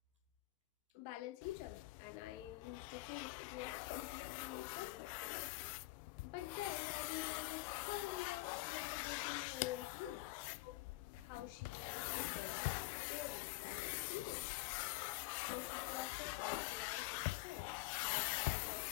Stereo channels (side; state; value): right; quieter; 20.3 dB